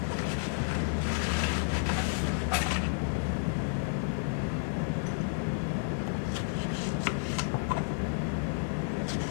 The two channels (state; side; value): silent; right; digital silence